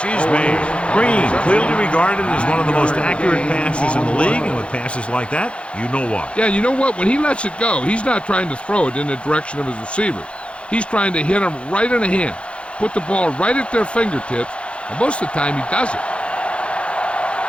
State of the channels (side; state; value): right; late; 0.059 ms